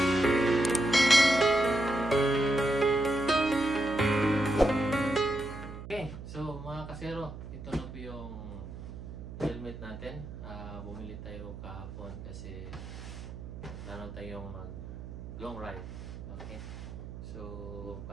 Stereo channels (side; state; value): right; noise; hum, 11 dB below the sound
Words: So mga kasero, ito na po yung helmet natin. Bumili tayo kahapon kasi plano tayong mag long ride. Okay. So